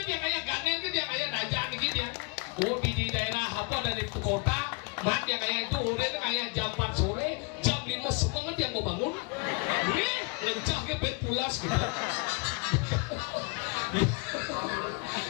kayak ganen itu yang kayak dajaan gitu ya di daerah apa dari kota mat yang kayak itu udah kayak jam 4 sore jam 5 semangat yang mau bangun lencahnya bed pulas gitu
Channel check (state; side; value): quieter; right; 32.3 dB